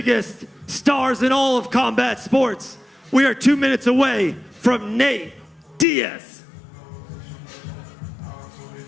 stars in all of combat sports. We are 2 minutes away from Nate Diaz.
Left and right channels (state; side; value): drops out; right; at 5.9 s